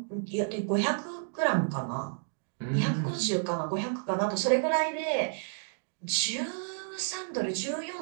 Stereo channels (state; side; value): silent; left; digital silence